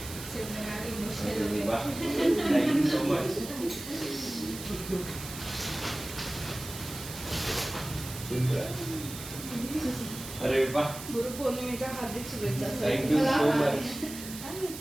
Thank you so much. Simran. अरे वाह. गुरुपौर्णिमेच्या हार्दिक शुभेच्छा. Thank you so much.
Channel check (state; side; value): noise; right; hiss, 11 dB below the sound